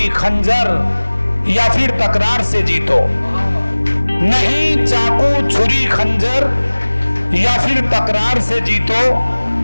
खंजर या फिर तकरार से जीतो, नहीं चाकू छुरी खंजर या फिर तकरार से जीतो।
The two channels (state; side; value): inverted; both; correlation -1.00